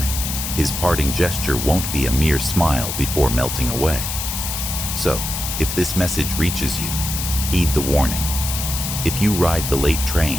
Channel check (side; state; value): left; noise; hiss, 4 dB below the sound